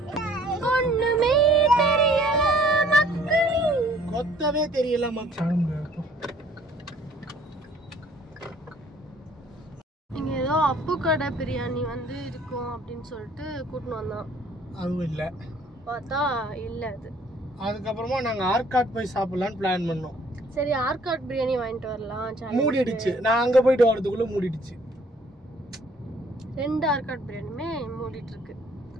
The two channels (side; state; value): both; normal; correlation 0.58